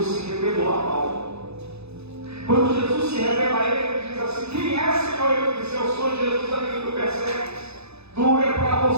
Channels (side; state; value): left; late; 0.79 ms